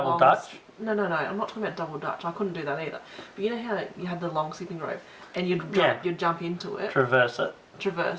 long... Dutch? No, I'm not talking about double Dutch. I couldn't do that either. But you know how you had the long skipping rope, and you'd jump into it, Traverse it.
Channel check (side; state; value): both; identical; correlation 1.00